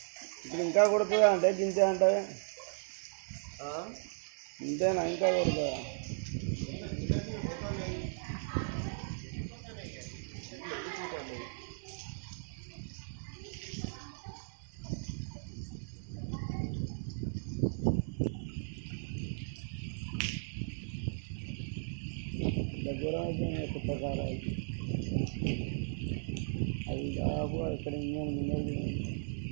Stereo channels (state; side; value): silent; left; digital silence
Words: ఇప్పుడు ఇంకా కొడుతుందా అంటే గింతే అంటే ఇంతేనా ఇంకా కొడుతుందా? దగ్గర కొత్త కారు అది దాపు ఇక్కడ